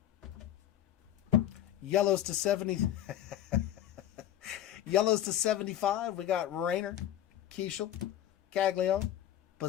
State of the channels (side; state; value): right; quieter; 11.7 dB